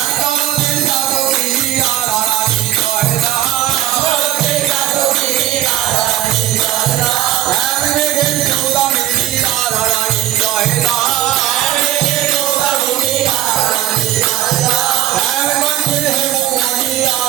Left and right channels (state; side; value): quieter; left; 13.2 dB